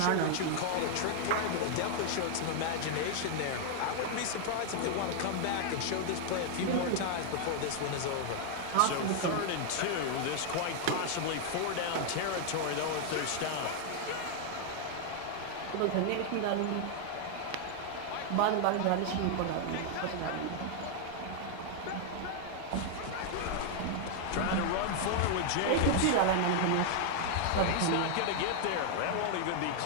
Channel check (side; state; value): both; different; correlation 0.00